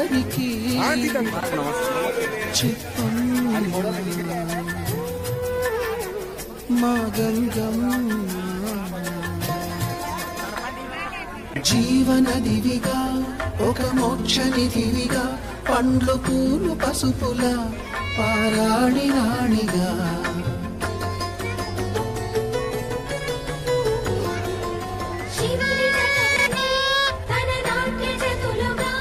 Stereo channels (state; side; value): identical; both; correlation 1.00